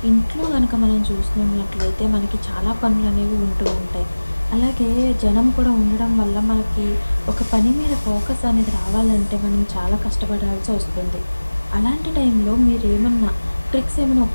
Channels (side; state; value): both; inverted; correlation -1.00